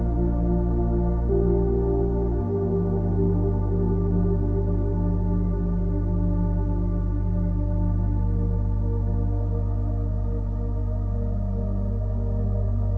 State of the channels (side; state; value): both; identical; correlation 1.00